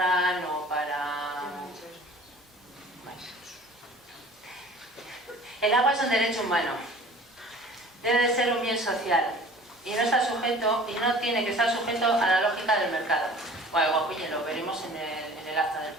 o para... Bueno. El agua es un derecho humano, debe de ser un bien social y no está sujeto, y no tiene que estar sujeto a la lógica del mercado. Bueno, Boquiñe, lo veremos en el acta del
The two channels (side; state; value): both; normal; correlation 0.46